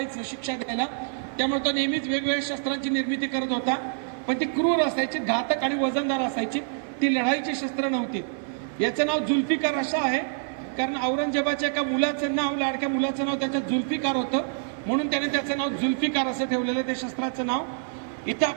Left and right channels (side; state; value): left; silent; 57 dB below the other